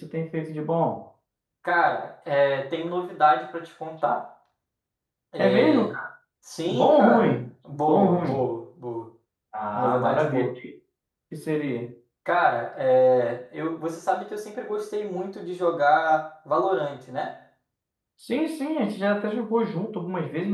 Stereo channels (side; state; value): both; identical; correlation 1.00